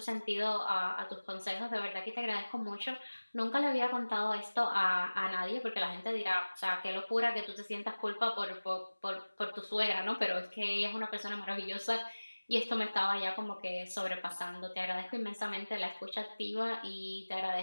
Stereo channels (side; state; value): both; inverted; correlation -1.00